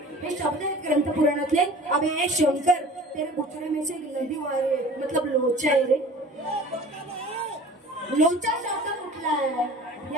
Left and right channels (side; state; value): both; normal; correlation 0.44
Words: हे शब्द आहेत ग्रंथ पुराणातले. अबे शंकर तेरे बुचड़े में से नदी वारे मतलब लोचा आहे रे. लोचा शब्द कुठला आहे?